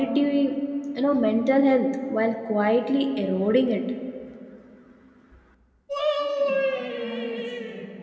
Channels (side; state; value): both; identical; correlation 1.00